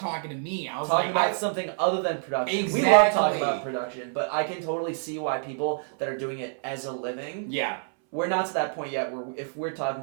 talking to me. I was Talking like, about something other than production. Exactly. We love talking about production, but I can totally see why people that are doing it as a living. yeah, We're not to that point yet where if we're talking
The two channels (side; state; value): left; silent; 60 dB below the other